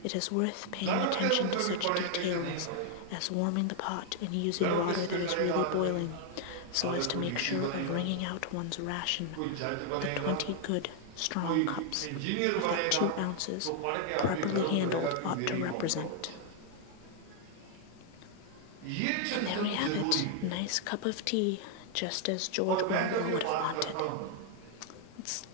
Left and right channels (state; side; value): different; both; correlation 0.00